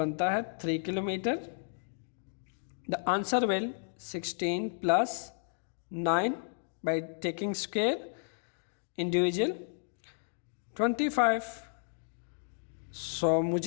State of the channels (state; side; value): silent; right; digital silence